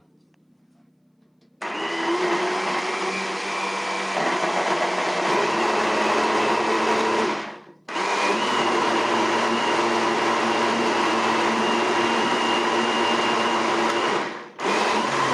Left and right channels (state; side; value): identical; both; correlation 1.00